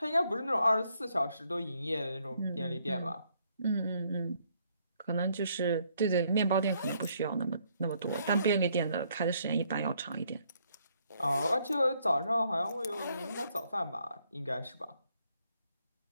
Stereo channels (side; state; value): both; inverted; correlation -0.70